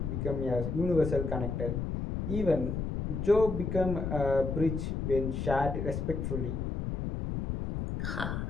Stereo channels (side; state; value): left; noise; rumble, 2 dB below the sound